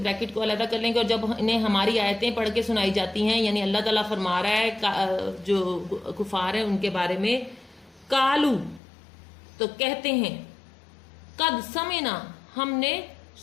کو علیحدہ کر لیں گے، اور جب انہیں ہماری آیتیں پڑھ کے سنائی جاتی ہیں یعنی اللہ تعالیٰ فرما رہا ہے جو کفار ہیں ان کے بارے میں، کالو تو کہتے ہیں، قد سمعنا ہم نے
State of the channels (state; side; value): drops out; right; at 8.8 s